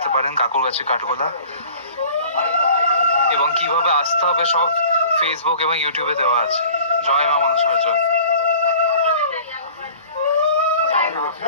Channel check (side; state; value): both; inverted; correlation -0.47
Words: পারেন কাকুরগাছি কাঠগোলা। এবং কিভাবে আসতে হবে সব ফেসবুক এবং ইউটিউবে দেওয়া আছে। জয় মা মনসা জয়।